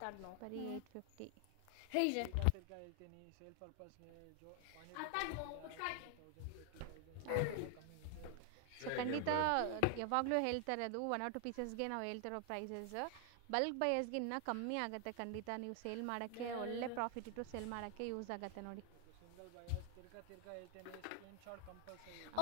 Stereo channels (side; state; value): both; different; correlation 0.00